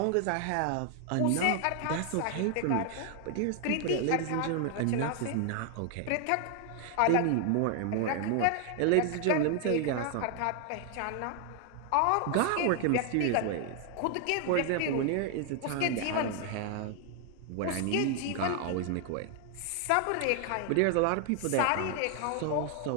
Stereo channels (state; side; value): different; both; correlation 0.00